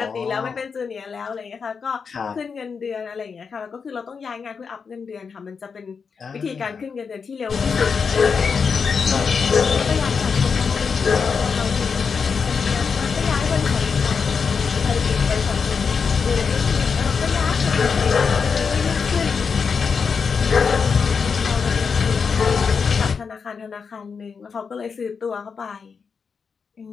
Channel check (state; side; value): quieter; right; 5.7 dB